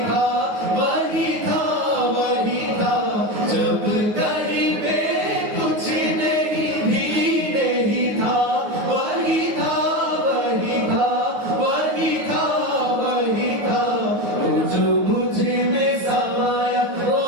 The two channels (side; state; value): left; late; 9.5 ms